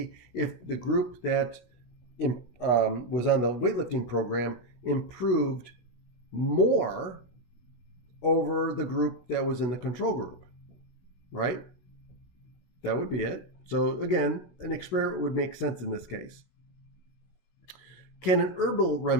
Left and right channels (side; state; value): right; late; 16 ms